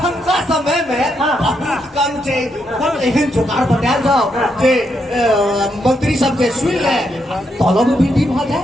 समय में बहुत कम छै कम एहन जुगाड़ बनायल जाओ जे मंत्री सब जे सुन ले तलब वृद्धि भ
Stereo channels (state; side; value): normal; both; correlation 0.79